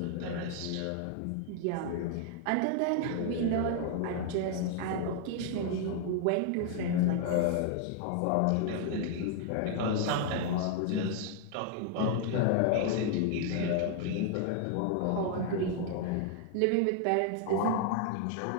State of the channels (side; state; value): both; different; correlation 0.00